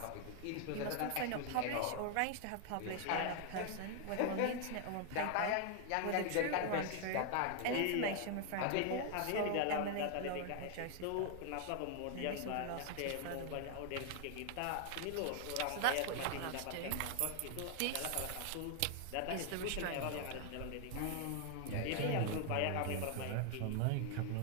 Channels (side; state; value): both; different; correlation 0.00